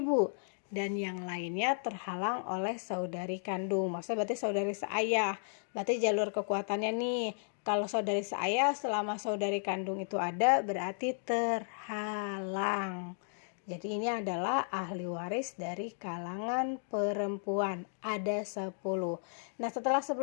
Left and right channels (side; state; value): right; silent; digital silence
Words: dan yang lainnya terhalang oleh saudari kandung. Maksudnya berarti saudari seayah. Berarti jalur kekuatannya nih, kalau saudari seayah selama saudari kandung itu ada berarti terhalang. Jadi ini adalah ahli waris dari kalangan perempuan. Ada 10. Nah, setelah